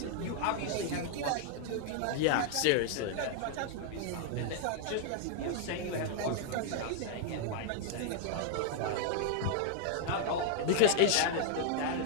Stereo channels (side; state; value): both; different; correlation -0.01